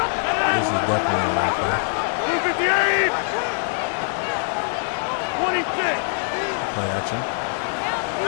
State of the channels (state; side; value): silent; right; digital silence